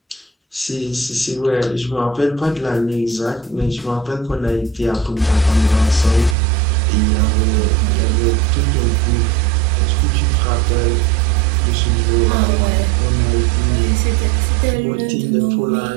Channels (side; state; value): left; drops out; at 6.4 s